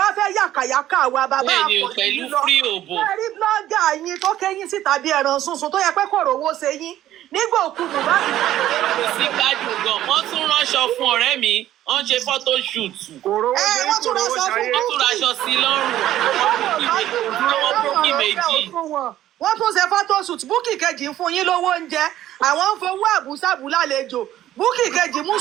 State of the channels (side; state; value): left; quieter; 13.0 dB